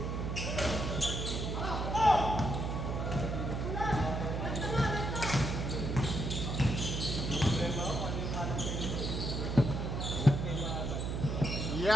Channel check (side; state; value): right; noise; hum, 2 dB below the sound